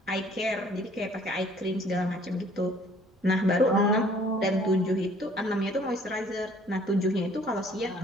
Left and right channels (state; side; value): normal; both; correlation 0.57